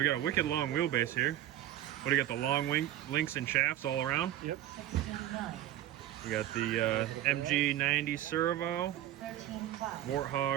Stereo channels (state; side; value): quieter; left; 12.9 dB